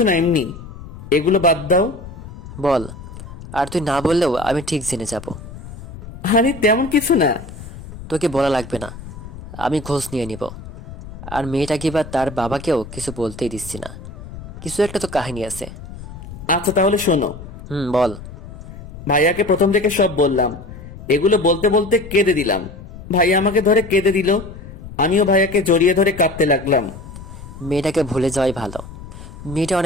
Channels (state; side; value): noise; left; rumble, 14 dB below the sound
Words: না, এমনি। এগুলো বাদ দাও। বল। আর তুই না বললেও আমি ঠিক জেনে যাব। আরে তেমন কিছু না। তোকে বলা লাগবে না, আমি খোঁজ নিয়ে নিব। আর মেয়েটাকে বা তার বাবাকেও কিছু বলতেই দিচ্ছি না। কিছু একটা তো কাহিনী আছে। আচ্ছা তাহলে শোনো। বল। ভাইয়াকে প্রথম থেকে সব বললাম। এগুলো বলতে বলতে কেঁদে দিলাম। ভাইয়া আমাকে ধরে কেঁদে দিল, আমিও ভাইয়াকে জড়িয়ে ধরে কাঁদতে লাগলাম। মেয়েটাকে ভুলে যাওয়াই ভালো। মেয়েটা